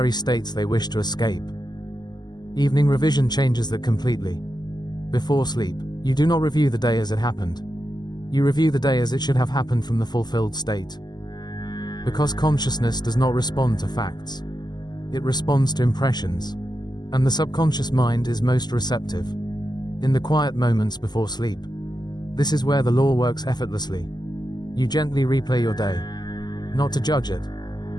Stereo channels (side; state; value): right; late; 0.20 ms